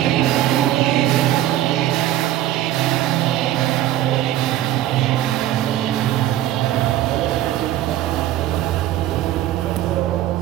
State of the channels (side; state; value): left; quieter; 13.2 dB